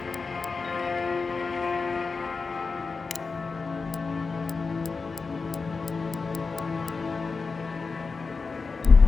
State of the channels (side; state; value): right; quieter; 4.5 dB